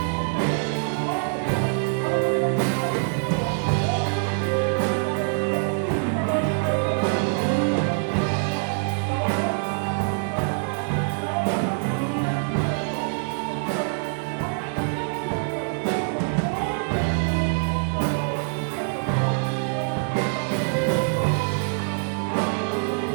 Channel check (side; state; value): left; silent; 62 dB below the other